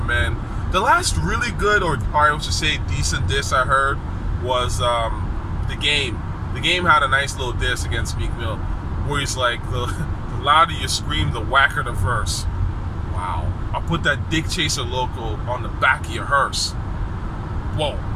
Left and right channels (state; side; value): identical; both; correlation 1.00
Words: man. The last really good, or I should say decent diss I heard was The Game. The Game had a nice little diss against Meek Mill, where he's like, the louder you scream, the whacker the verse. Wow. I'll put that Dick Chaser logo on the back of your hearse. Whoa,